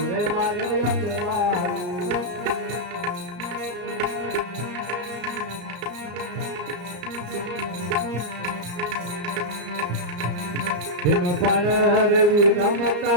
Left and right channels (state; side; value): late; left; 34 ms